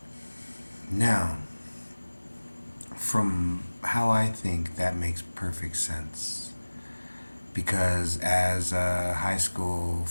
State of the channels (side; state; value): both; inverted; correlation -1.00